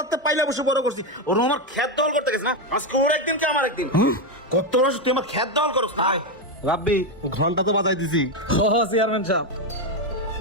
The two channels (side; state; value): both; normal; correlation 0.08